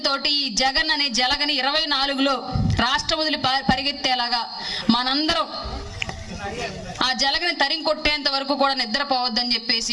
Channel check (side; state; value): both; identical; correlation 1.00